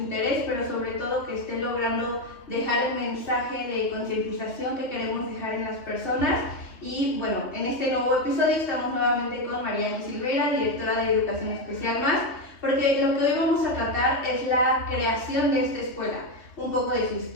pero sobre todo que esté logrando dejar el mensaje de concientización que queremos dejar en las personas. Y bueno, en este nuevo episodio estamos nuevamente con Mariana Silveira, directora de Educación Especial Más, porque lo que hoy vamos a tratar es la creación de esta escuela, un poco de su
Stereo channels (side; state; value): right; late; 2.8 ms